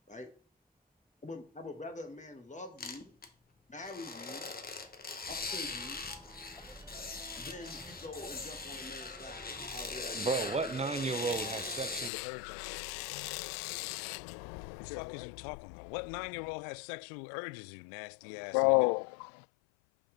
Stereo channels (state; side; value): drops out; right; at 12.1 s